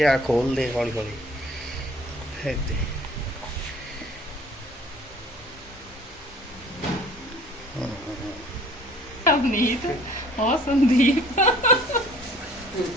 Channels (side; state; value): both; normal; correlation 0.52